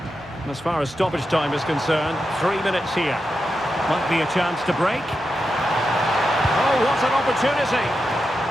And as far as stoppage time is concerned, 3 minutes here. Might be a chance to break. Oh, what an opportunity!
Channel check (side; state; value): both; normal; correlation 0.88